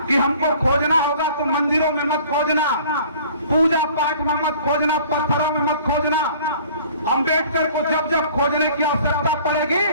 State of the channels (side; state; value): both; inverted; correlation -0.50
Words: कि हमको खोजना होगा तो मंदिरों में मत खोजना, पूजा पाठ में मत खोजना, पत्थरों में मत खोजना। अम्बेडकर को जब जब खोजने की आवश्यकता